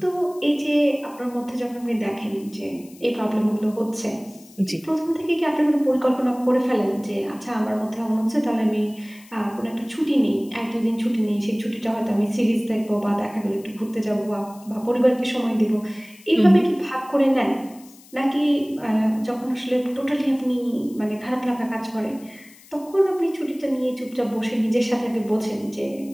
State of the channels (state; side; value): noise; left; hiss, 24 dB below the sound